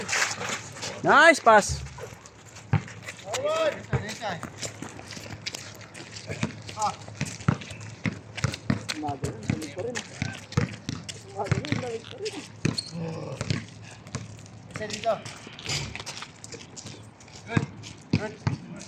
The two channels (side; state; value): both; identical; correlation 1.00